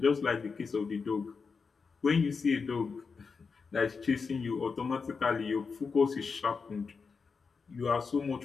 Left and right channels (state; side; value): quieter; right; 5.1 dB